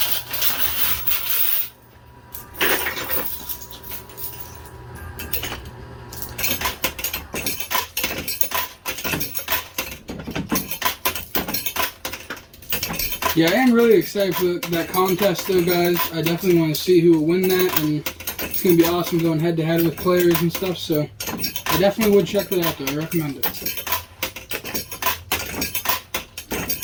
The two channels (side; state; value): both; identical; correlation 1.00